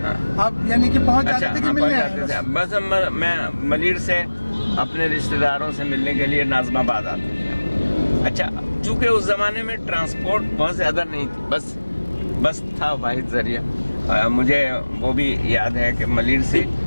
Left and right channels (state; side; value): inverted; both; correlation -1.00